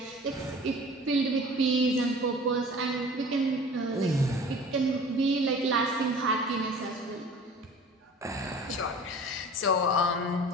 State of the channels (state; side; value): normal; both; correlation 0.43